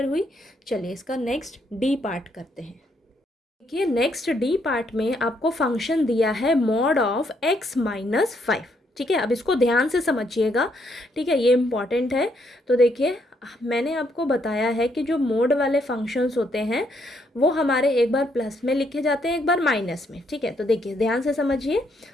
हुई। चलिए इसका नेक्स्ट डी पार्ट करते हैं। देखिए नेक्स्ट डी पार्ट में आपको फंक्शन दिया है मॉड ऑफ x -5। ठीक है, अब इसको ध्यान से समझिएगा। ठीक है, ये इम्पॉर्टेंट है। तो देखिए मैंने आपको बताया है कि जो मोड वाले फंक्शंस होते हैं वो हमारे एक बार प्लस में लिखे जाते हैं, एक बार माइनस में। ठीक है, तो देखिए ध्यान से समझिए।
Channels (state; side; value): normal; both; correlation 0.73